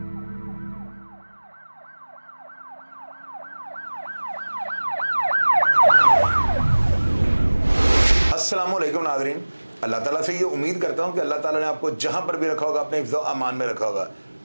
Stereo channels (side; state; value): both; inverted; correlation -1.00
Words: नाज़रीन, अल्लाह ताला से ये उम्मीद करता हूँ कि अल्लाह ताला ने आपको जहाँ पर भी रखा होगा अपने हिफ्ज़ अमान में रखा होगा।